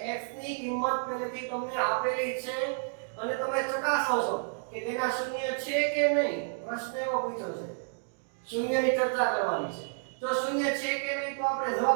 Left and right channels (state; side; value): silent; left; digital silence